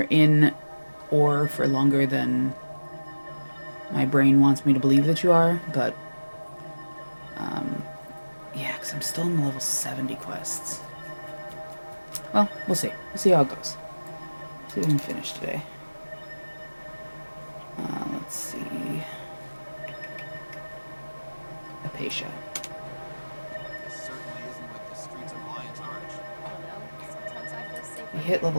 in ore for longer than my brain wants me to believe that you are, but yeah, because I'm still in the level 70 quests. Well, we'll see. We'll see how it goes. See if we can finish today. Let's see. Apatia. We hit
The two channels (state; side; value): inverted; both; correlation -1.00